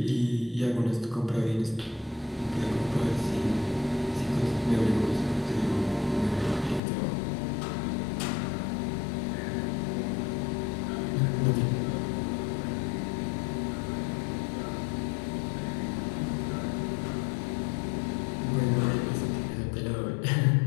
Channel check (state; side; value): drops out; right; at 6.8 s